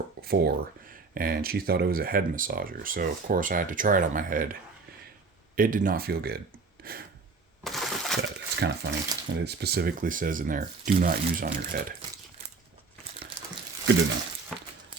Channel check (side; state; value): left; quieter; 4.3 dB